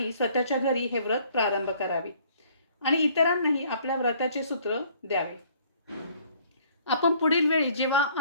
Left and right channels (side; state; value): both; inverted; correlation -0.59